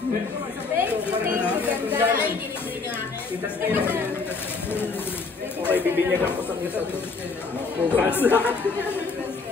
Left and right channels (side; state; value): right; quieter; 4.3 dB